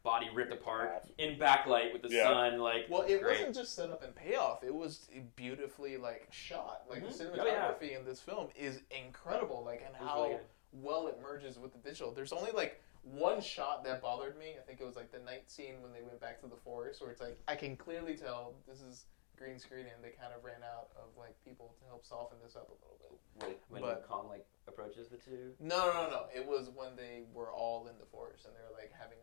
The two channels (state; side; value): silent; right; digital silence